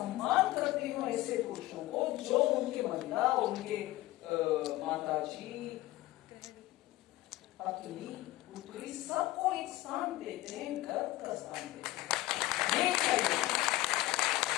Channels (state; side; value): quieter; right; 17.1 dB